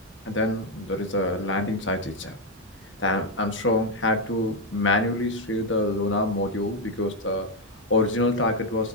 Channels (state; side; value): normal; both; correlation 0.03